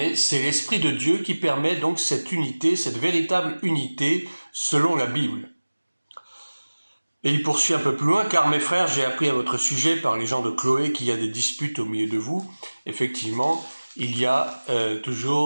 c'est l'Esprit de Dieu qui permet donc cette unité, cette véritable unité selon la Bible. Et il poursuit un peu plus loin, car mes frères, j'ai appris à votre sujet par les gens de Chloé qu'il y a des disputes au milieu de vous. Effectivement, il y a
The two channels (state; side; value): inverted; both; correlation -1.00